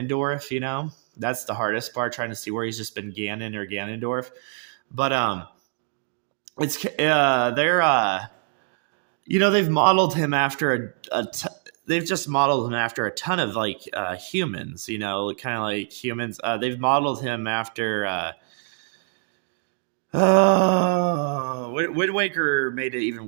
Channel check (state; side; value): silent; left; digital silence